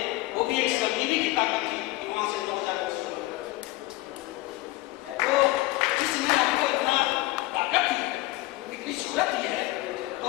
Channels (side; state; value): right; quieter; 19.3 dB